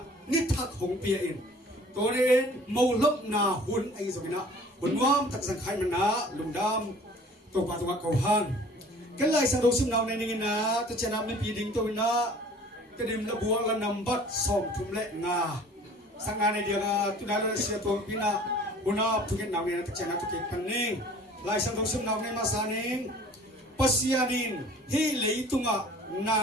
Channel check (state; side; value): normal; both; correlation 0.49